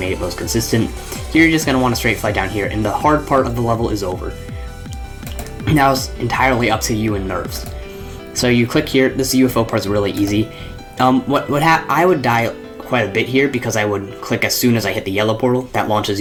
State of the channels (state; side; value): identical; both; correlation 1.00